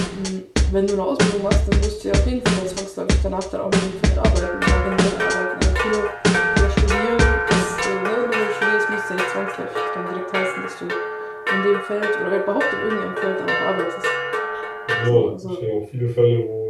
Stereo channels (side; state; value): both; identical; correlation 1.00